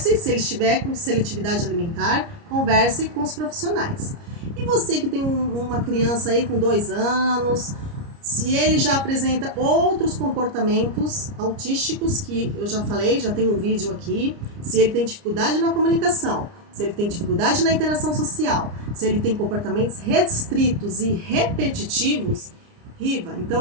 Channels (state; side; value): late; left; 29 ms